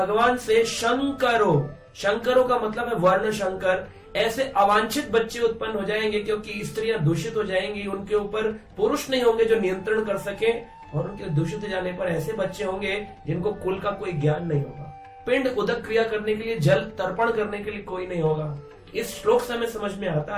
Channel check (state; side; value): identical; both; correlation 1.00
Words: से, शंकरो, शंकरों का मतलब है वर्ण शंकर। ऐसे अवांछित बच्चे उत्पन्न हो जाएंगे क्योंकि स्त्रियां दूषित हो जाएंगी, उनके ऊपर पुरुष नहीं होंगे जो नियंत्रण कर सके, और उनके दूषित हो जाने पर ऐसे बच्चे होंगे जिनको कुल का कोई ज्ञान नहीं होगा। पिंड उदक क्रिया करने के लिए, जल तर्पण करने के लिए कोई नहीं होगा। इस श्लोक से हमें समझ में आता